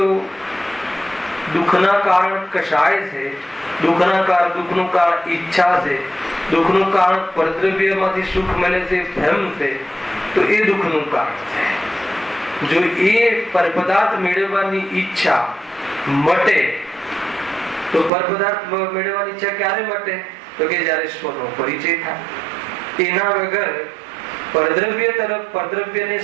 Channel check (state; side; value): drops out; left; at 18.1 s